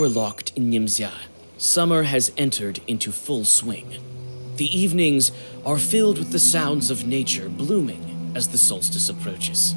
locked in Nimzia, summer has entered into full swing. The evenings are filled with the sounds of nature blooming as the solstice approaches.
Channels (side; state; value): both; inverted; correlation -1.00